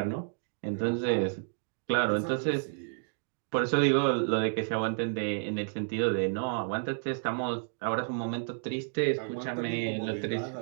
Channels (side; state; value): left; silent; digital silence